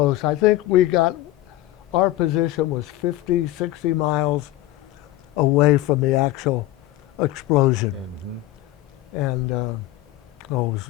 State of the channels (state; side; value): quieter; right; 15.5 dB